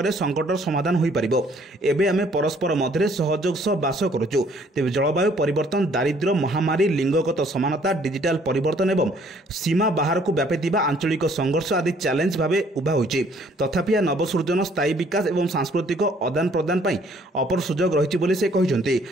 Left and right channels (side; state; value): both; normal; correlation 0.61